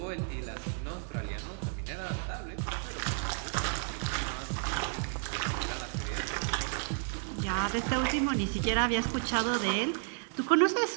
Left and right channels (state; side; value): silent; left; 56 dB below the other